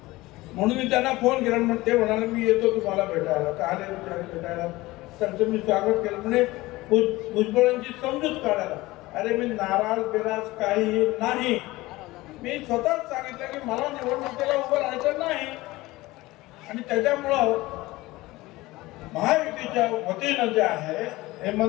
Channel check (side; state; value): right; quieter; 19.5 dB